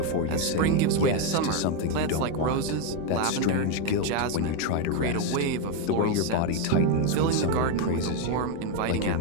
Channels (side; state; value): both; different; correlation 0.02